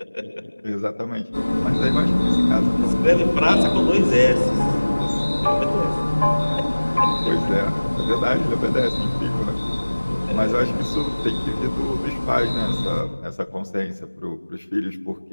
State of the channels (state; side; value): inverted; both; correlation -1.00